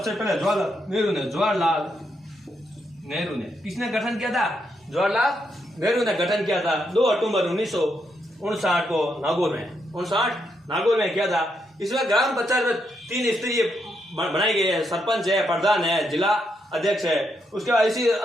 पहले जवाहरलाल नेहरू ने। किसने गठन किया था, जवाहरलाल नेहरू ने गठन किया था 2 अक्टूबर 1959 को नागौर में किया था। इसमें ग्राम पंचायत में 3 स्तरीय बनाए गए हैं, सरपंच है, प्रधान है, जिला अध्यक्ष है। उसके बाद इसी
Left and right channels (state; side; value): normal; both; correlation 0.79